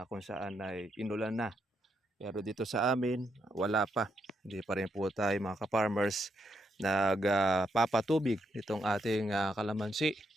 kung saan ay inulan na. Pero dito sa amin, wala pa. Hindi pa rin po tayo mga ka-farmers nagpapatubig itong ating kalamansi.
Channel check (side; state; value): both; normal; correlation 0.79